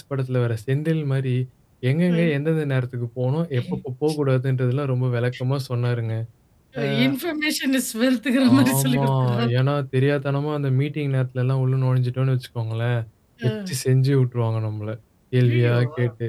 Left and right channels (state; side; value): identical; both; correlation 1.00